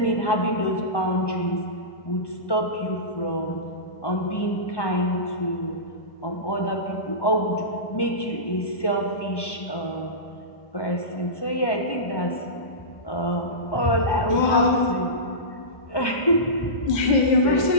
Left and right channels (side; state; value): right; late; 1.2 ms